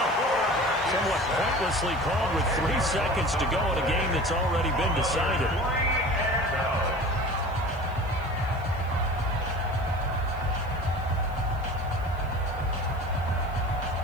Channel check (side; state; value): right; noise; hiss, 28 dB below the sound